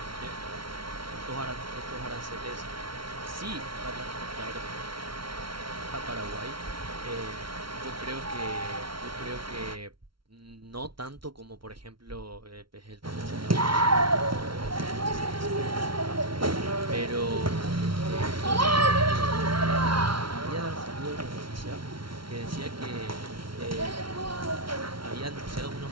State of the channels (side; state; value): left; late; 0.74 ms